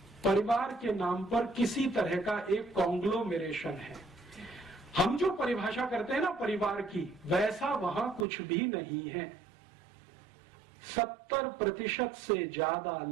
परिवार के नाम पर किसी तरह का एक कॉन्ग्लोमेरेशन है। हम जो परिभाषा करते हैं ना परिवार की, वैसा वहां कुछ भी नहीं है। 70% से ज्यादा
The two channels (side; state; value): left; drops out; at 8.2 s